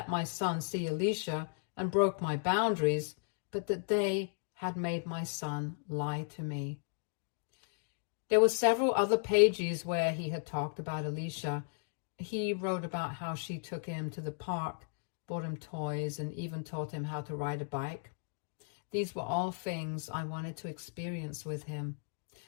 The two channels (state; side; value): silent; right; digital silence